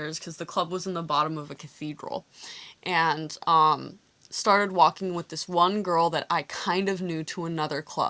because the club was in the bottom of a cathedral, and, started walking with this one girl that I kind of knew to another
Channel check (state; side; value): identical; both; correlation 1.00